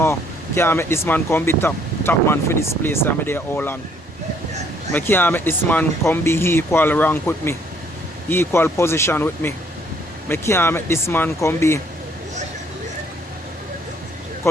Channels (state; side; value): normal; both; correlation 0.64